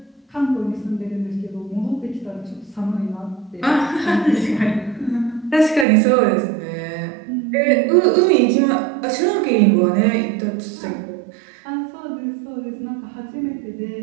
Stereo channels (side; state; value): left; drops out; at 5.9 s